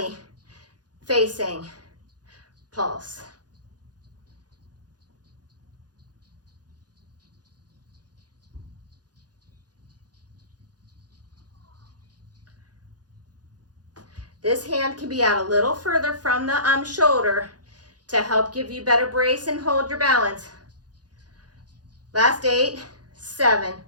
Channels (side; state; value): left; late; 0.69 ms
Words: facing pulse. This hand can be out a little further from the shoulder to help give you better brace and hold your balance. Last 8, 7,